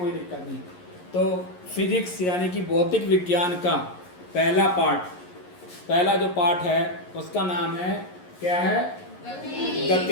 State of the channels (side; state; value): right; late; 11 ms